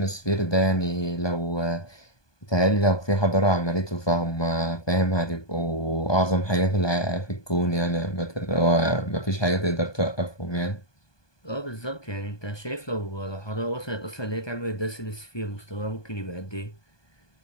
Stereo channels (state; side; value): late; right; 1.2 ms